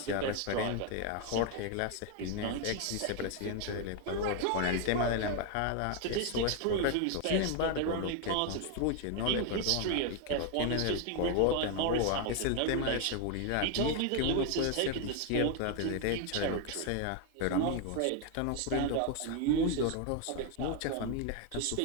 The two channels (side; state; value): both; different; correlation 0.01